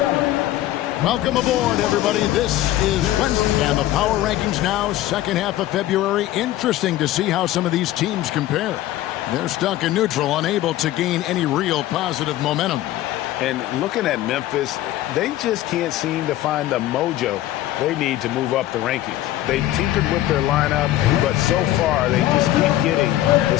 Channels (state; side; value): quieter; right; 14.4 dB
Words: Welcome aboard, everybody. This is Wednesday, and the power rankings now, second half of February. Interesting to see how some of these teams compare. They're stuck in neutral, unable to gain any real positive momentum. And looking at Memphis, they just can't seem to find the mojo they need to move up the rankings. They tinkered with their lineup, but so far they just keep getting the